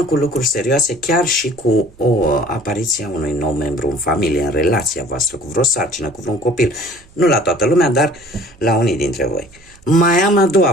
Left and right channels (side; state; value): right; noise; hum, 28 dB below the sound